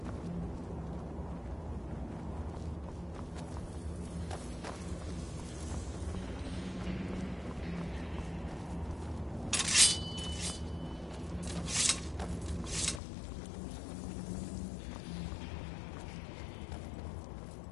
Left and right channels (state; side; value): drops out; right; at 13.0 s